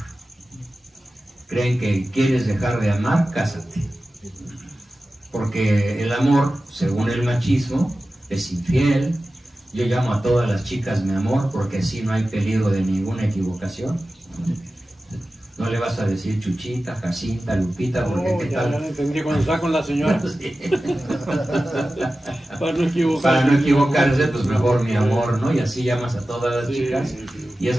Creen que quieres dejar de amar, cásate. Porque el amor, según el machismo, es infiel. Yo llamo a todas las chicas mi amor porque así no hay peligro de ninguna equivocación. No le vas a decir Chuchita, Jacinta, Lupita, porque ¿qué ya tal? lo entendí cuando está con la señora. Sí. Para no equivocarse. Para no equivocarse, pues mejor mi amor, ¿no? Y así llamas a todas las chicas y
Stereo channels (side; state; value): both; normal; correlation 0.95